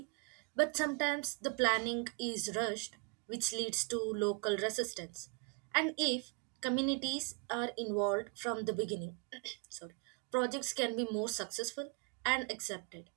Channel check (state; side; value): quieter; left; 34.6 dB